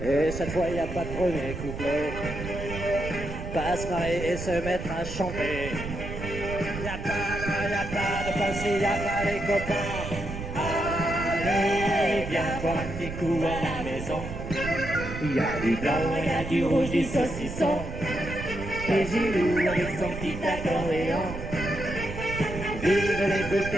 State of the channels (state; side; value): noise; right; rumble, 7 dB below the sound